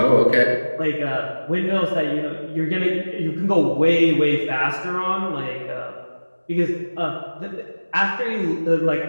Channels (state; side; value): inverted; both; correlation -1.00